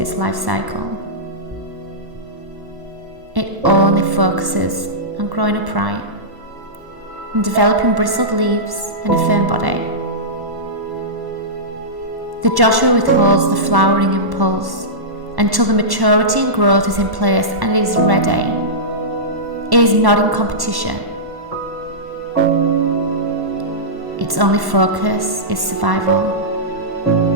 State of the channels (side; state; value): left; late; 1.1 ms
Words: life cycle. It only focuses on growing upright and developing bristled leaves and a firm body. The Joshua withholds the flowering impulse until the maturity and growth is in place and it is ready. It is not in competition. Its only focus is survival,